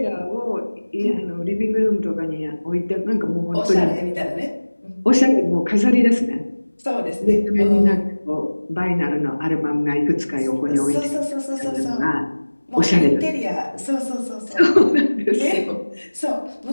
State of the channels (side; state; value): both; inverted; correlation -1.00